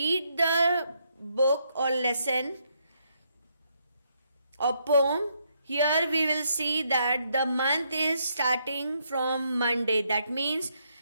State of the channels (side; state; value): both; inverted; correlation -0.76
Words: the book or lesson or poem, here we will see that the month is starting from Monday. That means